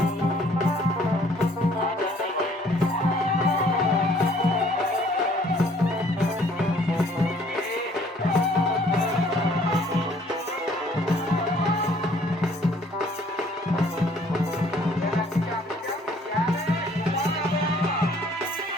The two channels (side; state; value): both; normal; correlation 0.59